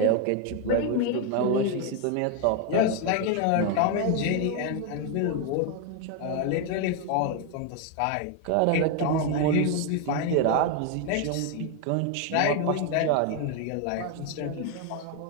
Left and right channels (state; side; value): different; both; correlation 0.01